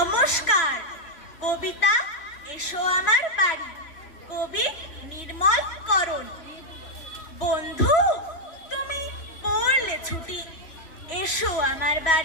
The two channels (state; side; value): late; right; 3.0 ms